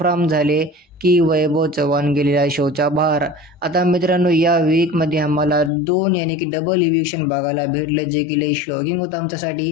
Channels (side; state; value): right; drops out; at 5.7 s